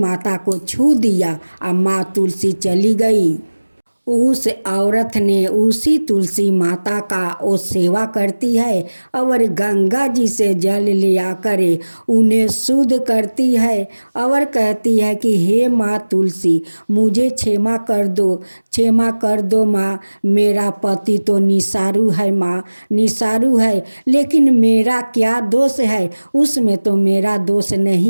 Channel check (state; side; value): inverted; both; correlation -1.00